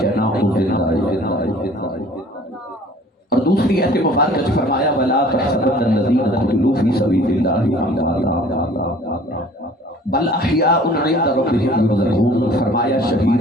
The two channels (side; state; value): both; normal; correlation 0.50